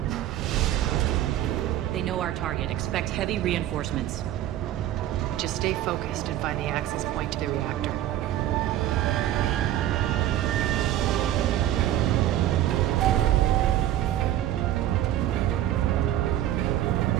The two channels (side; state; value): left; quieter; 12.7 dB